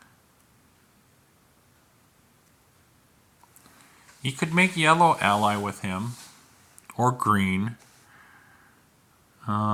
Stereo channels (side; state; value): both; identical; correlation 1.00